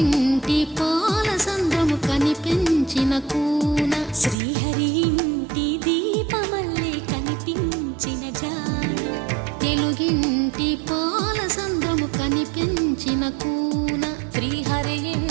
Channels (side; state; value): left; drops out; at 4.4 s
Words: పాల సంద్రము కనిపించిన కూన శ్రీహరి ఇంటి దీపమల్లే కనిపించిన జాడ తెలుగింటి పాల సంద్రము కూన శ్రీహరి